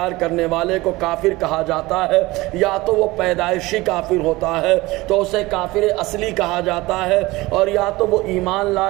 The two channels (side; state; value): left; quieter; 20.5 dB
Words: کرنے والے کو کافر کہا جاتا ہے، یا تو وہ پیدائشی کافر ہوتا ہے تو اسے کافر اصلی کہا جاتا ہے، اور یا تو وہ ایمان